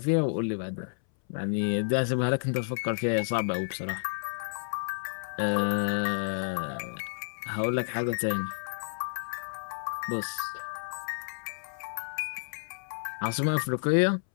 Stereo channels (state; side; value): silent; right; 57 dB below the other